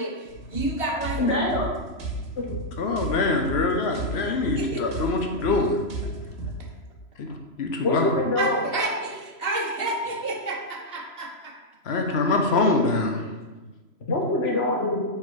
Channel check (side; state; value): right; late; 3.0 ms